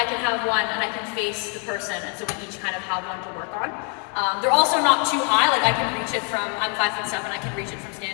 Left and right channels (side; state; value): right; quieter; 38.2 dB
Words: can have one and I can face the person, and so we each kind of have one to work on. They're also not too high, like I can reach it from, I'm 5'7", I can reach it from